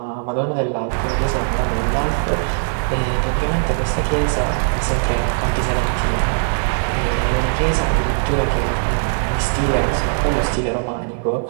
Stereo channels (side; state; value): left; silent; 56 dB below the other